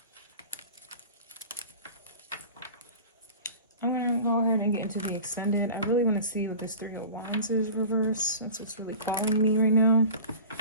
I'm going to go ahead and get into the extended. I really want to see what this Three of Wands is reverse, since it's really calling me right now.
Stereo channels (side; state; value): both; inverted; correlation -0.38